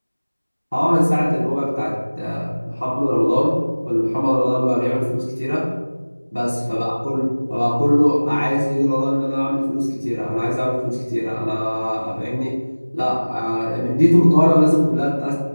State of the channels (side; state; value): both; inverted; correlation -1.00